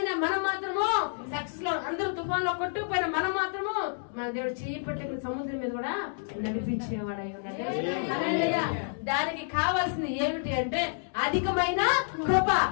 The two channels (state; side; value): silent; right; digital silence